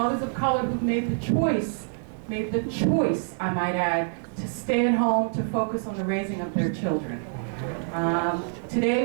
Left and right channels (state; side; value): silent; left; 61 dB below the other